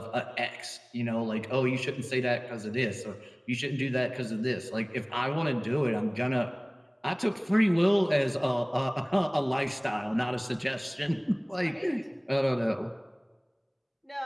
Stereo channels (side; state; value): both; identical; correlation 1.00